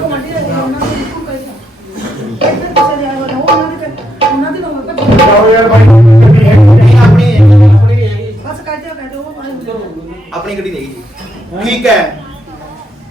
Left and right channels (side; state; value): both; normal; correlation 0.78